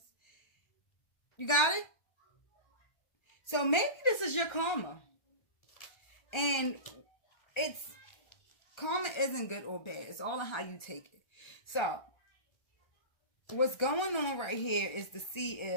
You got it? So maybe this is your karma. And karma isn't good or bad. It's all on how you take it. So, what's going on right here is to see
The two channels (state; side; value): late; right; 1.3 ms